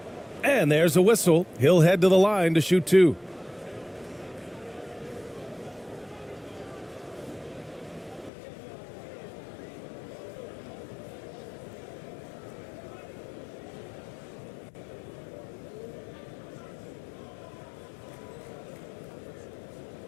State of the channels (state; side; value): drops out; right; at 8.3 s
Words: And there's a whistle. He'll head to the line to shoot 2.